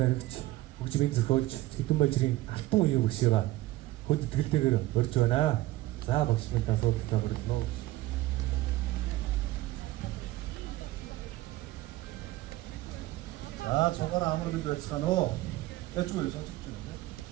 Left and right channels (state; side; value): quieter; left; 17.4 dB